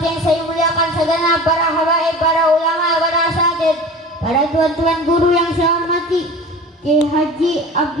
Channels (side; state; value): both; normal; correlation 0.38